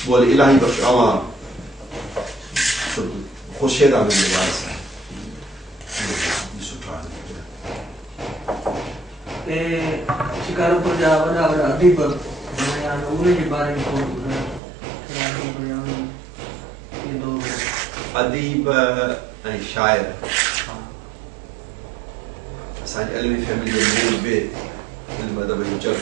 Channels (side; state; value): left; drops out; at 14.6 s